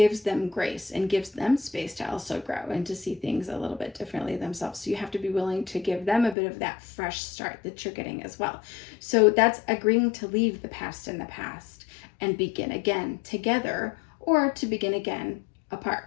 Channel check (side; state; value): right; drops out; at 6.4 s